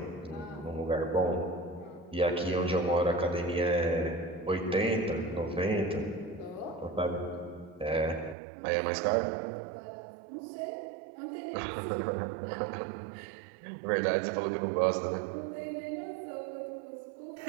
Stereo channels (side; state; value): left; drops out; at 8.3 s